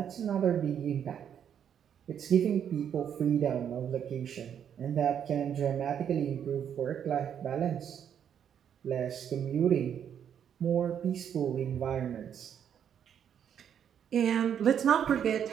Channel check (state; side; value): quieter; left; 8.7 dB